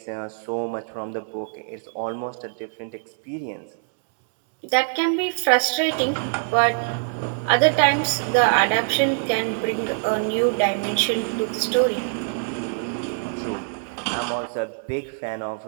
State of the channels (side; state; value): left; silent; digital silence